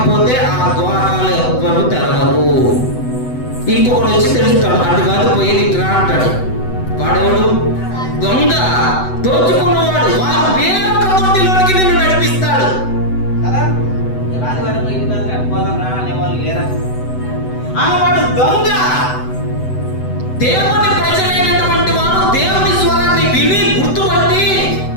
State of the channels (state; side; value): late; right; 8.0 ms